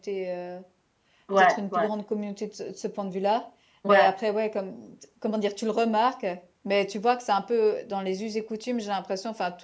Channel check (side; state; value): both; identical; correlation 1.00